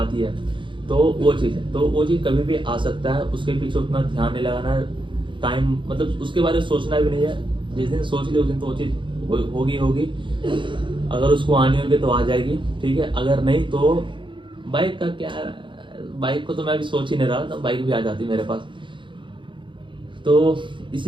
ये है। तो वो चीज़ है, तो वो चीज़ कभी भी आ सकता है, उसके पीछे उतना ध्यान नहीं लगाना है। टाइम मतलब उसके बारे में सोचना भी नहीं है। जिस दिन सोच ली उस दिन तो वो चीज़ होगी। अगर उसको आनी होगी तो आ जाएगी। ठीक है, अगर नहीं तो बाइक का क्या, बाइक को तो मैं अभी सोच ही नहीं रहा था, बाइक भी आ जाती मेरे पास। तो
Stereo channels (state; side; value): late; left; 0.24 ms